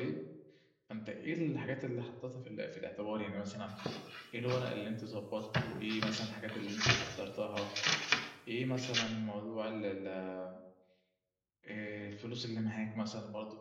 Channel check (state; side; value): identical; both; correlation 1.00